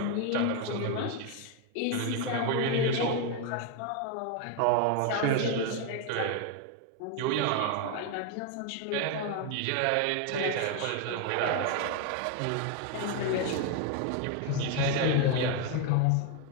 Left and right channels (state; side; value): different; both; correlation 0.01